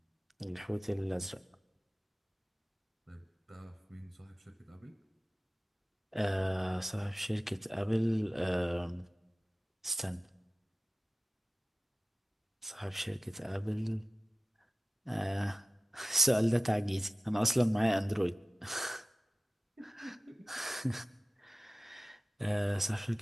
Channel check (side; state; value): both; normal; correlation 0.94